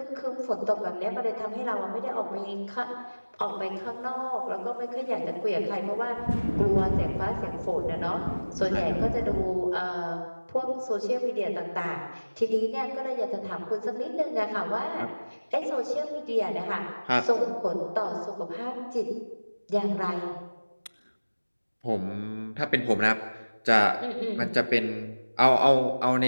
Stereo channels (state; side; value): inverted; both; correlation -1.00